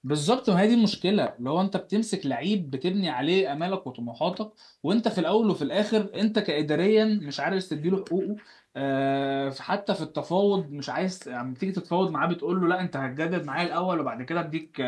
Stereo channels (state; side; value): identical; both; correlation 1.00